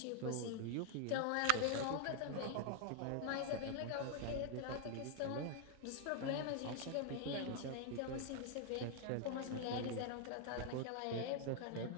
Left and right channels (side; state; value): both; different; correlation 0.00